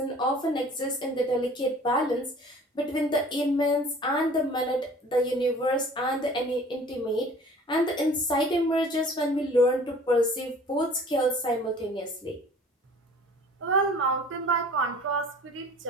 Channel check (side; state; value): both; normal; correlation 0.48